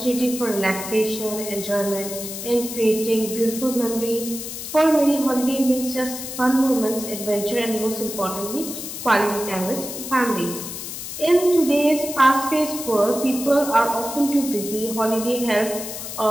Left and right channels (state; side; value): noise; left; hiss, 8 dB below the sound